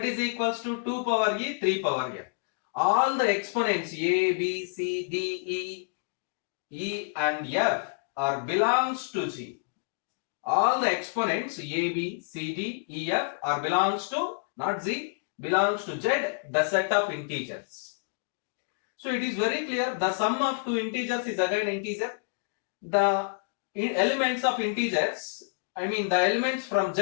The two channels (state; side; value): silent; right; digital silence